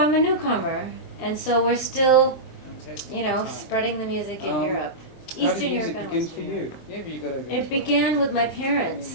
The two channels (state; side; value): late; right; 23 ms